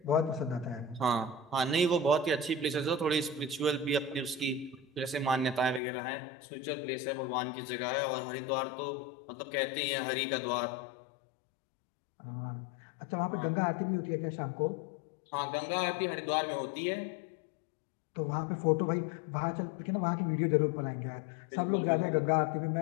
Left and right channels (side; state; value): right; drops out; at 5.8 s